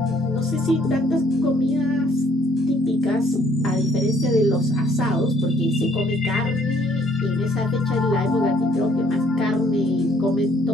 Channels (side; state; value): both; normal; correlation 0.62